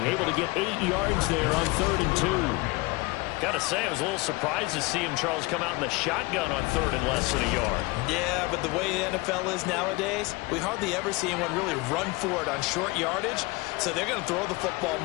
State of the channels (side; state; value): right; quieter; 23.8 dB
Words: Able to get 8 yards there on 3rd and 2. Got to say, I was a little surprised to see him, Charles, come out in the shotgun on 3rd and less than a yard. Yeah, but the way the NFL is nowadays, we hardly ever see anyone really run for it on short yardage. So they're going to throw the football